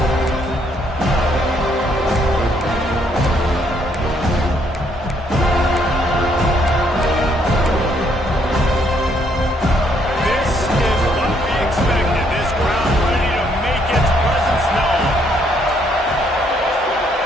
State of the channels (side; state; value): both; normal; correlation 0.70